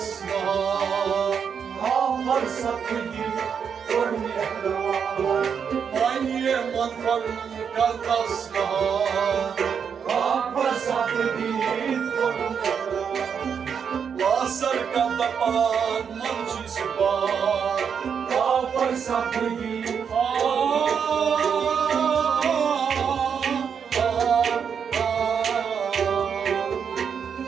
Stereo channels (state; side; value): quieter; left; 7.0 dB